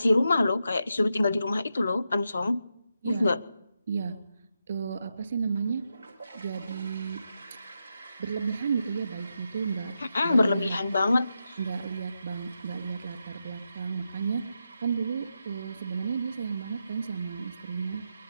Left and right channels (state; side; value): inverted; both; correlation -0.86